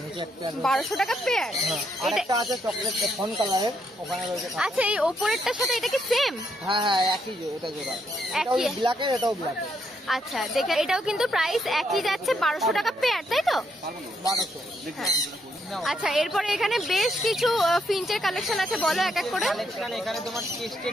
নিচে এক পেয়ার। 1200 টাকা পেয়ার। হ্যাঁ, আরেকটা আছে চকলেট ফন কালারের, ওখানে রয়েছে। আচ্ছা, এই ওপরেরটার সাথে এটা কি সেম? হ্যাঁ, একই, এটা জোড়া। এটাও ব্ল্যাকের, এটাও ব্ল্যাকের। আচ্ছা, দেখে এটাও কিন্তু প্রাইস একই যাচ্ছে, 1200 টাকা পেয়ার, তাই তো? 1200। হ্যাঁ। আচ্ছা, এরপরে এখানে বেশ কিছু ফিঞ্চের কালেকশন আছে, বলো এক এক করে। কালেকশন এখানে তোমার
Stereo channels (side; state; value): both; normal; correlation 0.76